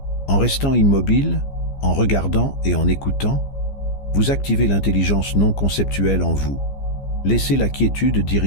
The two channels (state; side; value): late; right; 15 ms